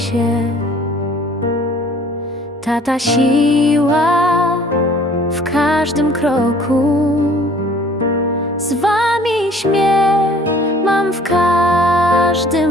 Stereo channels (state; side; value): normal; both; correlation 0.53